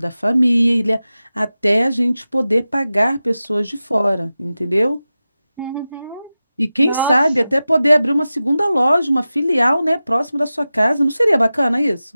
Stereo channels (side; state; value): both; inverted; correlation -0.94